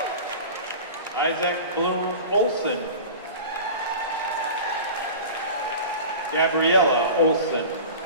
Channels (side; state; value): both; inverted; correlation -0.35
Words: Isaac Bloom Olson, Gabriella Olson,